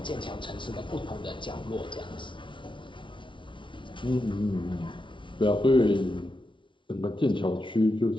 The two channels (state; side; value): late; right; 0.24 ms